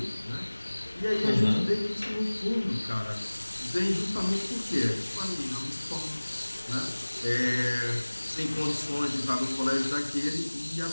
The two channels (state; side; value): inverted; both; correlation -1.00